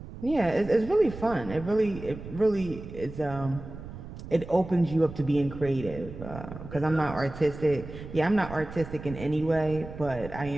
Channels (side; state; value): right; noise; rumble, 12 dB below the sound